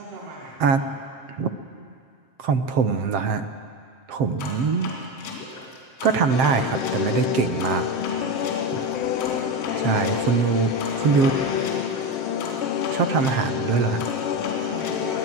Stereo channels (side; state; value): left; late; 7.6 ms